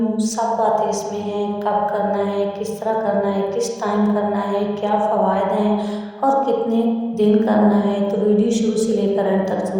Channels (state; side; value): identical; both; correlation 1.00